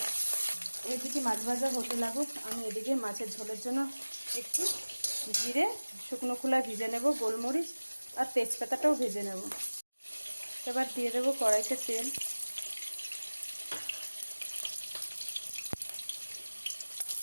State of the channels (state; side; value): inverted; both; correlation -1.00